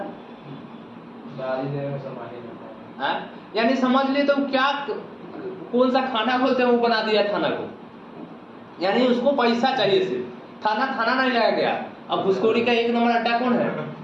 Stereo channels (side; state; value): both; identical; correlation 1.00